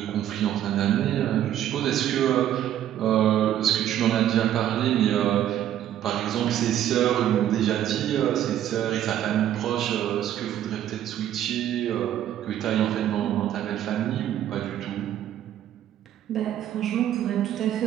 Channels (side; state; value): left; quieter; 11.4 dB